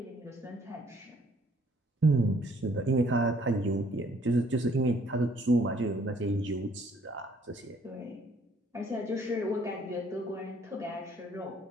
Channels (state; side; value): normal; both; correlation 0.62